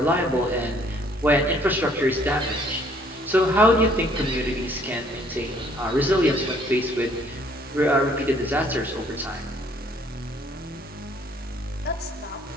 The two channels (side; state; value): both; normal; correlation 0.62